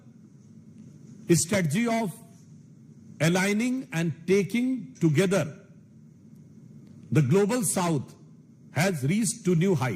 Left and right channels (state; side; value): identical; both; correlation 1.00